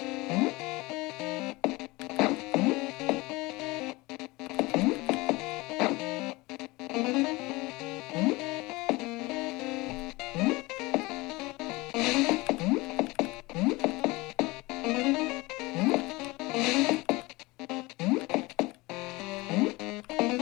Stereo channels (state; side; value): quieter; right; 22.4 dB